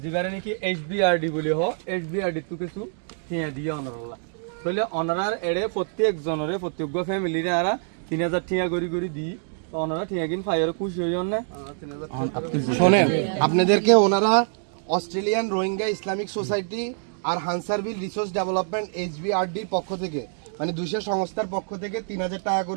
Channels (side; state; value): left; silent; digital silence